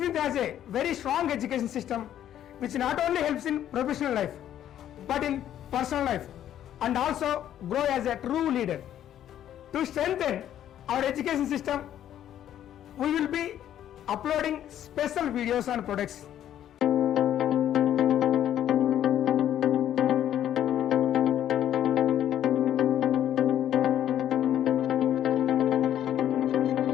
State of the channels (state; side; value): quieter; right; 11.0 dB